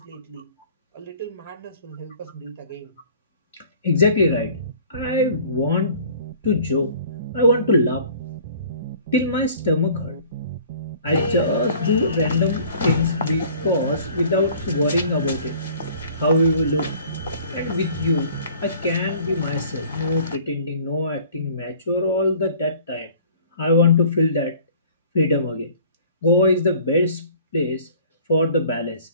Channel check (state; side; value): inverted; both; correlation -0.50